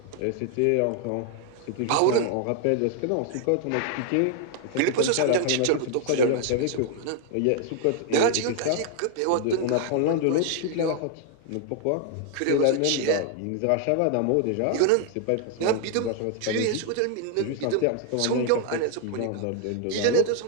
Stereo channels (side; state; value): both; different; correlation 0.00